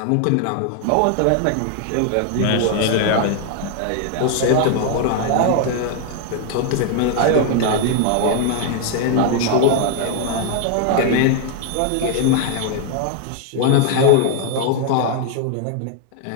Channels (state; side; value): different; both; correlation 0.00